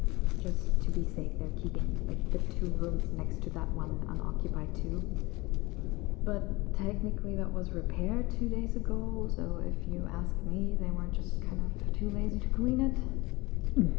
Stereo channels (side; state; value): right; quieter; 22.7 dB